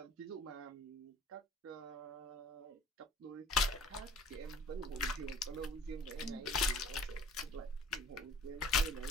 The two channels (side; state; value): both; normal; correlation 0.51